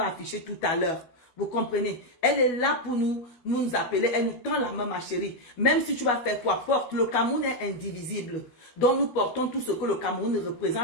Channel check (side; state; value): right; late; 12 ms